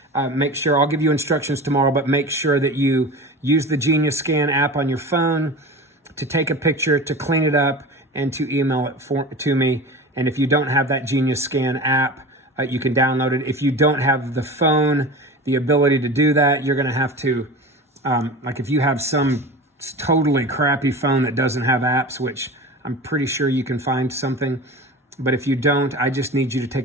make sure, I'll give you instructions tomorrow, but make sure that you use the Genius Scan app on your phone to take a picture, to clean it up, and to email it to me. And if you don't have that Genius Scan app, you can download it. If you don't have the phone, the ability to do that, you're gonna have to, like if you have some totally crappy phone that doesn't have apps, which I'm pretty sure you can find something, But if you don't, I just need you to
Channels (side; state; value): both; normal; correlation 0.32